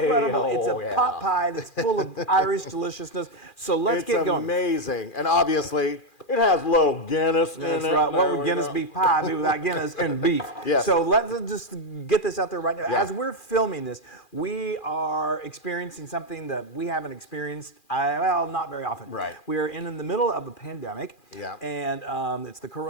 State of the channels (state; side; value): late; right; 2.4 ms